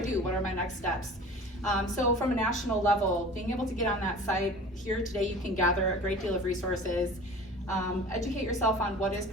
What are my next steps? So from a national level, being able to get on that site, here today you can gather a great deal of resources. Educate yourself on what is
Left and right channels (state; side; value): normal; both; correlation 0.41